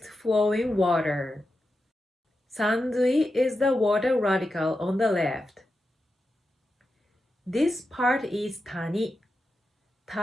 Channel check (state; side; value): normal; both; correlation 0.89